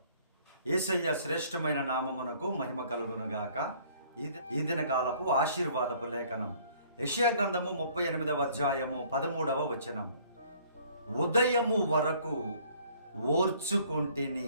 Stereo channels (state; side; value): inverted; both; correlation -0.58